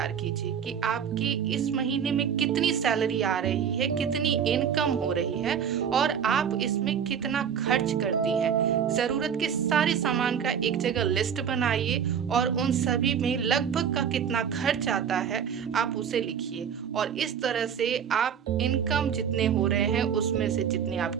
कीजिए कि आपकी इस महीने में कितनी सैलरी आ रही है, कितनी इनकम हो रही है और आप इसमें कितना खर्च करती हैं। ज़रूरत के सारे सामान का एक जगह लिस्ट बनाइए और उन सभी में लगभग का कितना खर्च आता है आप उसे लिखिए और इस तरह से आप इनकम जितने हो रहे हैं उसमें से जितनी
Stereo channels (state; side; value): quieter; left; 7.9 dB